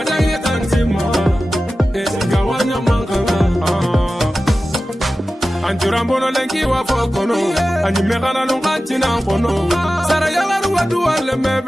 yetantima Eche gawanya mankana Anjurambono lenki wa fokono Anyimekana nunganchi na mpono Sara yalaru wadu wale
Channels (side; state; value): both; normal; correlation 0.95